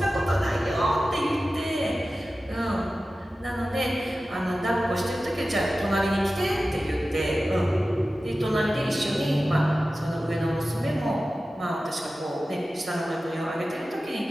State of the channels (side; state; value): both; normal; correlation 0.95